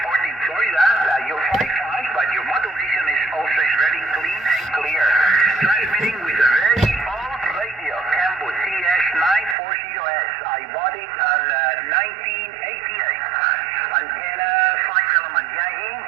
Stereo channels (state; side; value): drops out; left; at 9.6 s